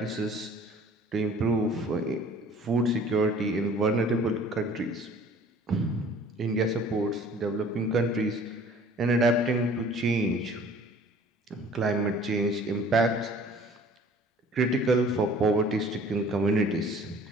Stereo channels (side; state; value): both; normal; correlation 0.51